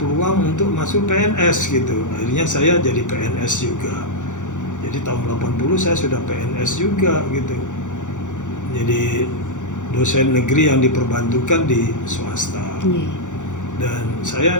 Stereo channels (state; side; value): late; right; 0.86 ms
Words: untuk masuk PNS gitu. Akhirnya saya jadi PNS juga. Jadi tahun 80 saya sudah PNS juga gitu. Jadi dosen negeri yang diperbantukan di swasta. Dan